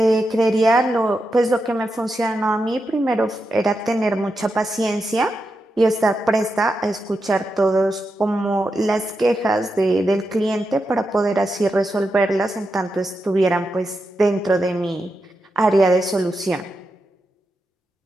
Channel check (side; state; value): both; normal; correlation 0.87